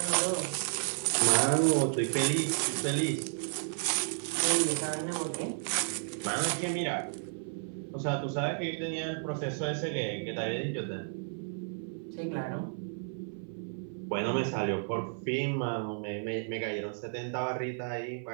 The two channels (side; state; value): left; silent; 56 dB below the other